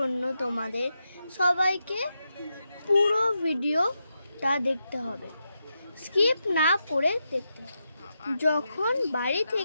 তোমাদের সবাইকে পুরো ভিডিওটা দেখতে হবে, স্কিপ না করে দেখতে হবে। যখন বাড়ি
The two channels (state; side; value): inverted; both; correlation -0.86